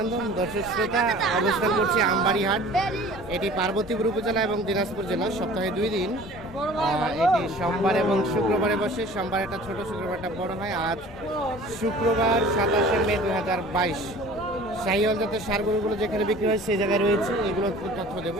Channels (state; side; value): normal; both; correlation 0.46